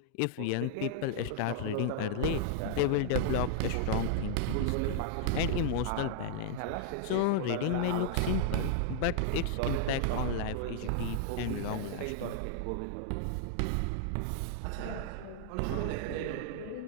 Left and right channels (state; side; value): different; both; correlation -0.01